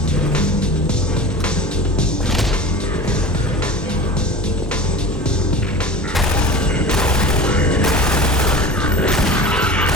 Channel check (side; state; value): both; normal; correlation 0.35